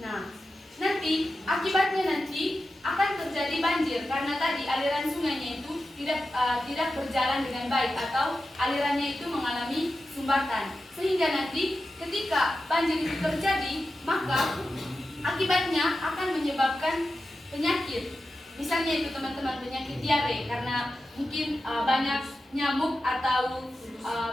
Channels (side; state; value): both; normal; correlation 0.92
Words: Nah, nanti akibatnya nanti akan terjadi banjir karena tadi aliran sungainya itu tidak berjalan dengan baik atau alirannya itu mengalami sumbatan. Sehingga nanti ketika banjir itu terjadi, maka akibatnya akan menyebabkan penyakit. Misalnya itu teman-teman, penyakit diare karena mungkin banyak nyamuk atau